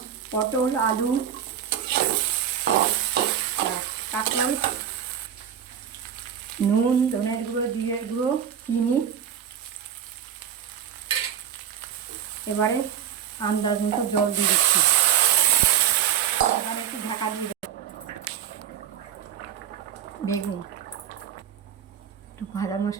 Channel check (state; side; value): quieter; left; 9.1 dB